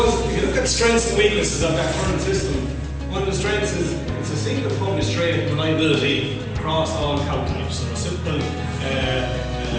if you look at the strengths and weaknesses of that current system, one of the strengths is it's a single published trait reliability across all cow types. So a simple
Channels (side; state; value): both; identical; correlation 1.00